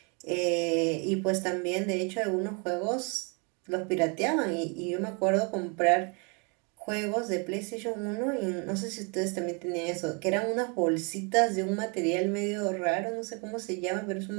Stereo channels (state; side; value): quieter; left; 33.6 dB